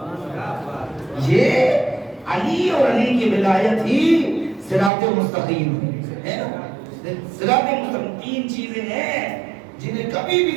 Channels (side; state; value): left; drops out; at 4.9 s